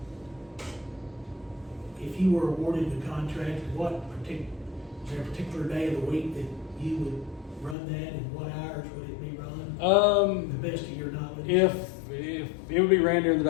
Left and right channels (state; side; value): drops out; right; at 7.8 s